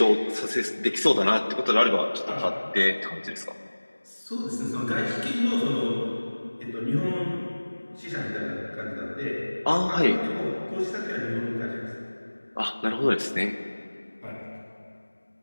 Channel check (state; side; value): inverted; both; correlation -1.00